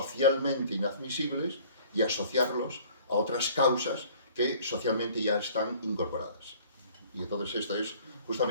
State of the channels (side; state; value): both; inverted; correlation -0.51